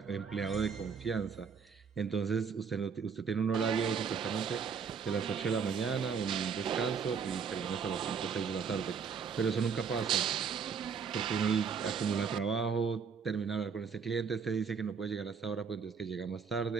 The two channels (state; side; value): quieter; left; 6.1 dB